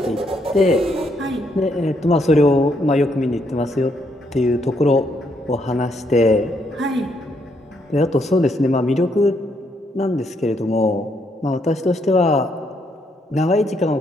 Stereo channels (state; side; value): normal; both; correlation 0.74